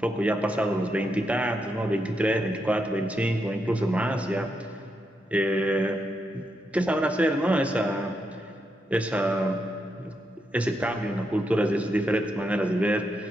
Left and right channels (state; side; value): normal; both; correlation 0.82